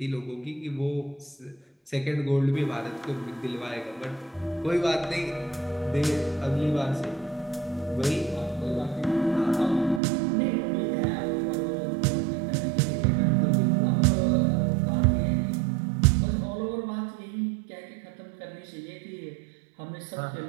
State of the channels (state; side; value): drops out; left; at 10.0 s